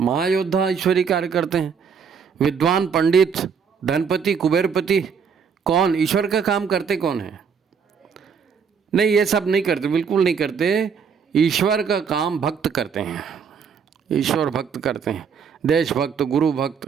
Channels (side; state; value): left; quieter; 6.4 dB